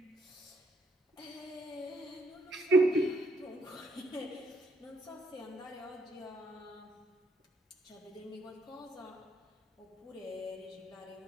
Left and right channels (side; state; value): both; normal; correlation 0.72